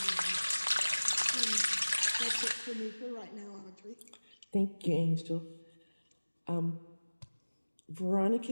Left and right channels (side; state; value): both; inverted; correlation -1.00